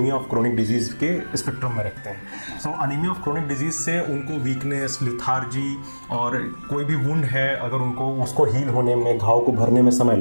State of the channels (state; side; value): inverted; both; correlation -1.00